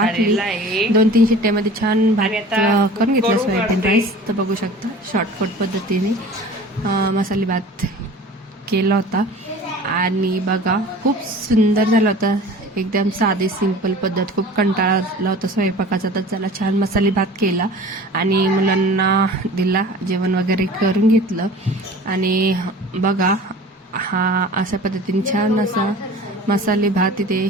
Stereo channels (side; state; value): both; normal; correlation 0.42